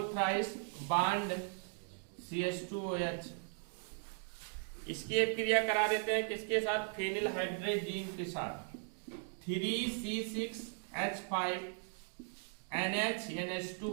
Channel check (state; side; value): silent; left; 52 dB below the other